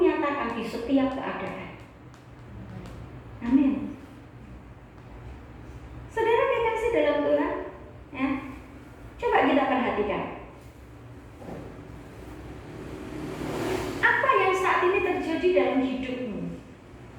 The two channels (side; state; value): both; identical; correlation 1.00